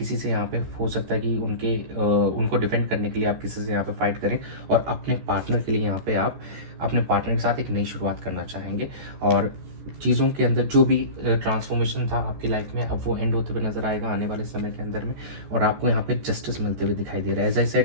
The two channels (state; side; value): late; left; 14 ms